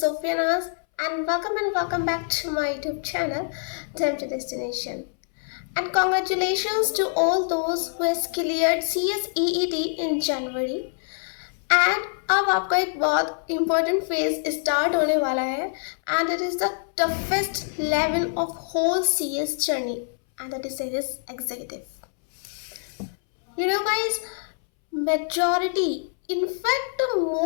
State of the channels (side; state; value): right; silent; 62 dB below the other